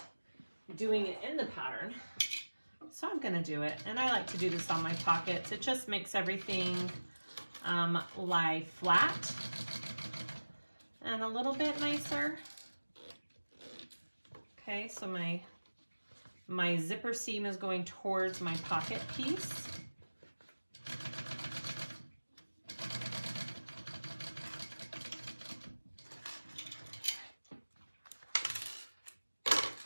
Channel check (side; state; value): both; inverted; correlation -1.00